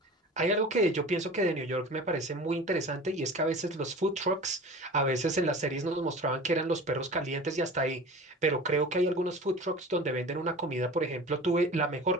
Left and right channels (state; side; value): normal; both; correlation 0.37